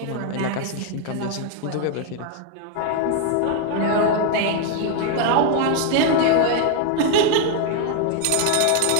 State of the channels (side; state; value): both; different; correlation 0.00